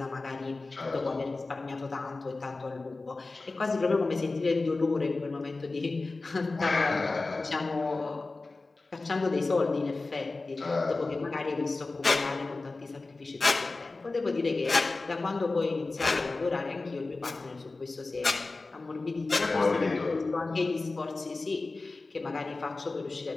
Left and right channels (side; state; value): right; quieter; 3.5 dB